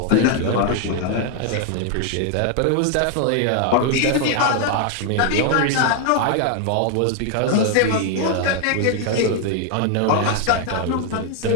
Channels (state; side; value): different; both; correlation 0.00